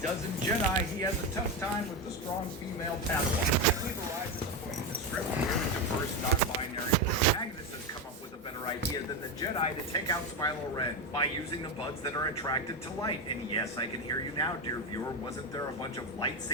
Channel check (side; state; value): both; normal; correlation 0.13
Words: dozen Jedi, he has a tough time with the strong female Padawan. We've arrived at the point in the script where the diverse non-binary protagonist has come up with a better idea than the Jedi to take out Smilo Ren by using the buds that are attracted to light. And yes, I can hear you now, dear viewer. Wasn't there a bunch of